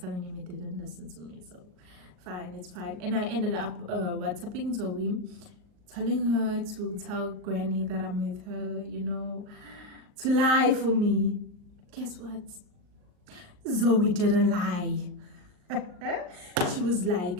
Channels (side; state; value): left; late; 39 ms